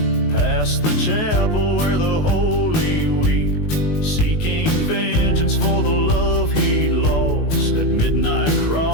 past the chapel where the holy weep, seeking vengeance for the love he'd lost. At midnight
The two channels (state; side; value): late; right; 19 ms